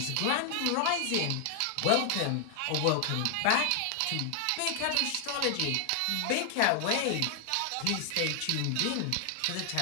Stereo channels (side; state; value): both; different; correlation 0.00